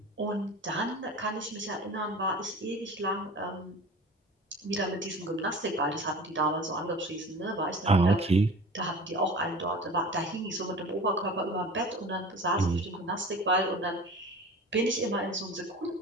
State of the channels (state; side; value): normal; both; correlation 0.39